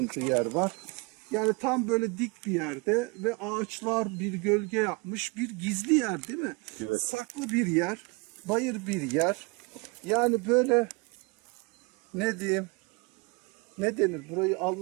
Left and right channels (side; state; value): left; quieter; 29.3 dB